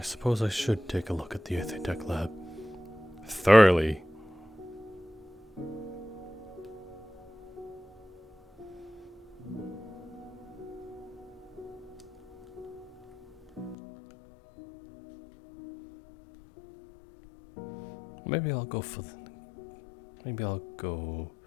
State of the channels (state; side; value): drops out; right; at 13.8 s